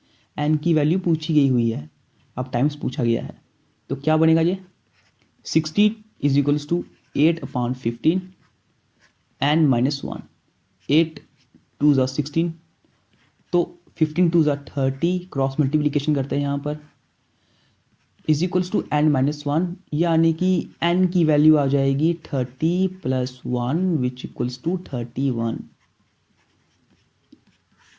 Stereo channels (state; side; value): identical; both; correlation 1.00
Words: एन की वैल्यू पूछी गई हुई है, अब टाइम्स पूछा गया है। तो क्या बनेगा ये, 60 is equals to 8/15 N minus 1। 8 2 ज़ा 16, तो 15 2 ज़ा 30, क्रॉस मल्टीप्लीकेशन करते हैं यहाँ पर, is equals to N minus 1, यानी कि एन की वैल्यू आ जाएगी 30 प्लस 1 विच इक्वल्स टू 31।